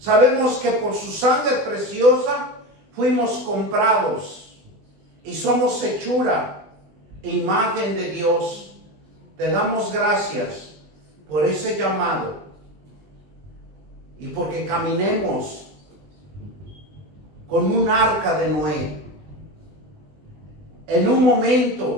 que por su sangre preciosa fuimos comprados y somos hechura, imagen de Dios. Te damos gracias por ese llamado y porque caminemos con un arca de Noé en un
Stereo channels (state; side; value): late; left; 20 ms